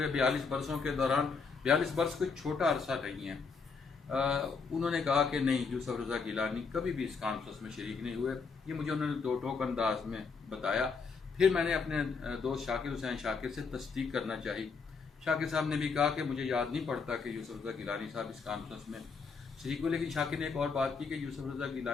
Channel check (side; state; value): right; quieter; 5.0 dB